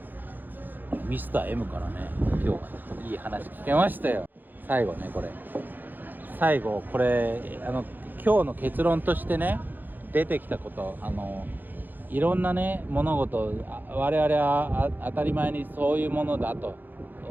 ミスター M からね今日はいい話聞けましたよ。最後これ今日の結論としてね出てきたこと、いろんなね物事我々は当たり前にそういうものだと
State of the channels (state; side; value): late; left; 0.088 ms